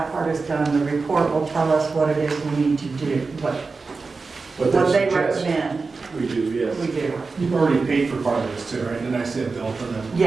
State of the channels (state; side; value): quieter; left; 4.2 dB